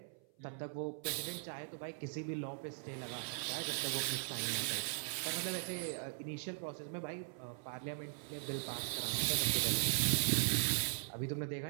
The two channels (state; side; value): silent; left; 51 dB below the other